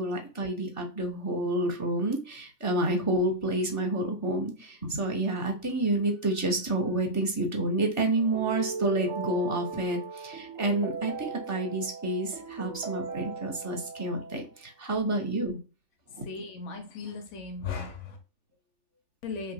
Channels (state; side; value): late; right; 2.7 ms